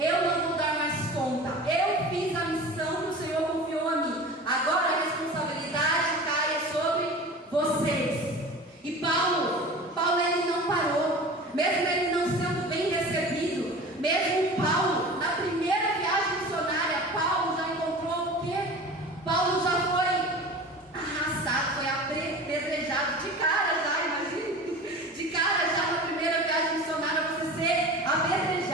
não vou dar mais conta. Eu fiz a missão que o Senhor confiou a mim. Agora a responsabilidade cai sobre vocês. E Paulo ele não parou. Mesmo ele não sendo bem recebido, mesmo Paulo, na primeira viagem missionária, Paulo já encontrou o quê? Paulo já foi arrastado, foi apedrejado de cara já, imagina. De cara já na primeira viagem missionária, você ser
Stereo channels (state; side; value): normal; both; correlation 0.37